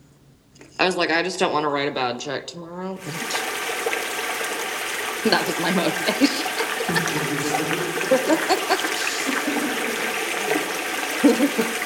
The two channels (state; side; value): identical; both; correlation 1.00